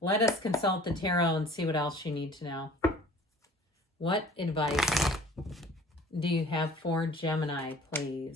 us consult the tarot and see what else you need to know. What advice do you have for Gemini,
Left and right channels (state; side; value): normal; both; correlation 0.49